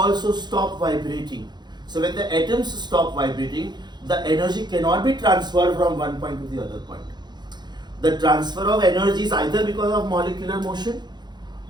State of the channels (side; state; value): left; late; 0.21 ms